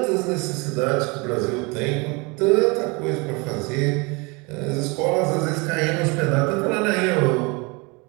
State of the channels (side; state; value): left; quieter; 28.0 dB